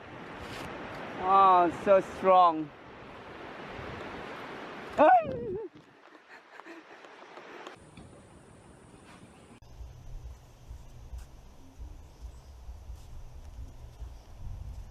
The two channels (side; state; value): both; identical; correlation 1.00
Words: Oh, so strong.